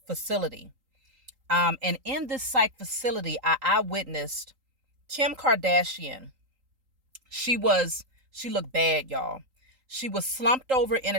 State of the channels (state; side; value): late; left; 3.8 ms